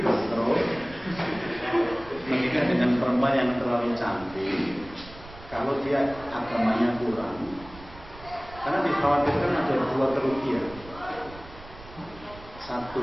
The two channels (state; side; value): noise; right; rumble, 18 dB below the sound